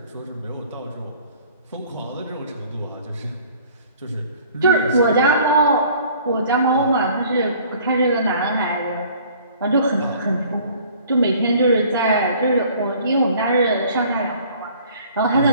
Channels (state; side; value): inverted; both; correlation -0.53